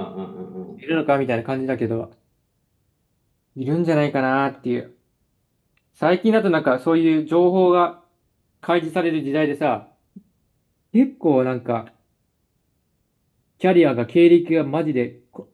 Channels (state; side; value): identical; both; correlation 1.00